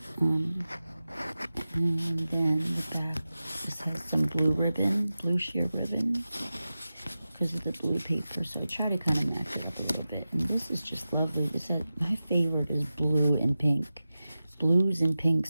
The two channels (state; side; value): inverted; both; correlation -0.94